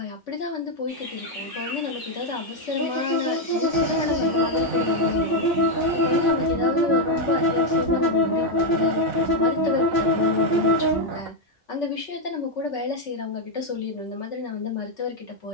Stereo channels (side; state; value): both; normal; correlation 0.02